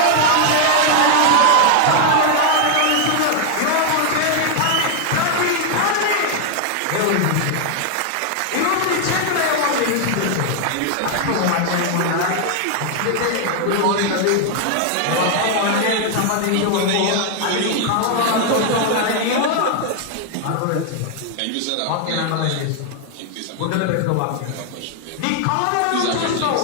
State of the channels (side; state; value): both; different; correlation 0.00